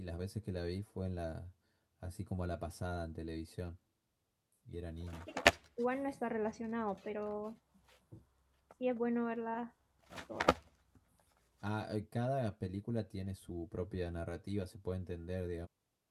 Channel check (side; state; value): both; identical; correlation 1.00